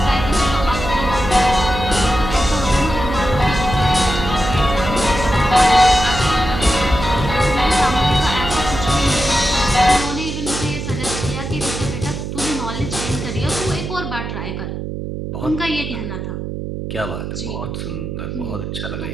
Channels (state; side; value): noise; right; hum, 6 dB below the sound